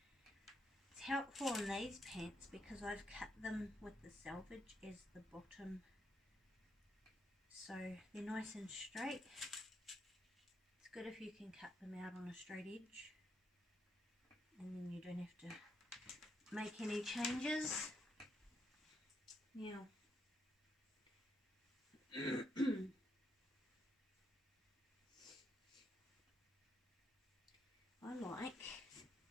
It's helpful on these pants because I've cut them with the selvage as the bottom, so they're nice and straight. It's good if you can cut them out on a straight edge, and then you don't have to make any changes. Now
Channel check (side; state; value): both; normal; correlation 0.78